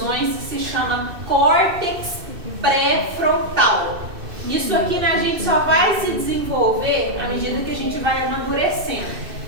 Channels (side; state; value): left; late; 2.6 ms